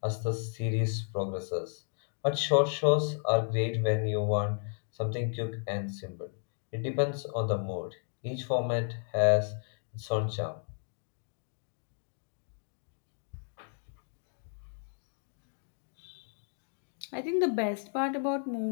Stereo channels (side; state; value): right; silent; digital silence